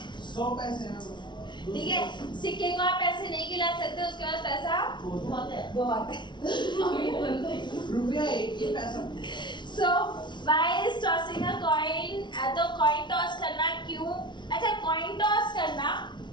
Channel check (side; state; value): right; late; 0.22 ms